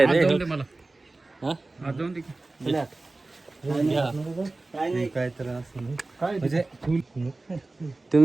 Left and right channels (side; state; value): left; quieter; 3.2 dB